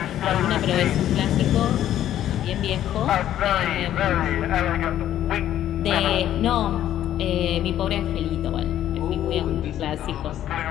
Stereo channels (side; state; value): right; quieter; 11.8 dB